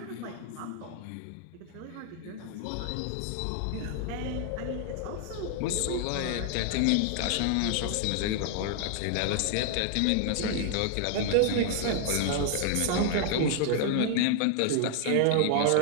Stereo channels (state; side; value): different; both; correlation 0.00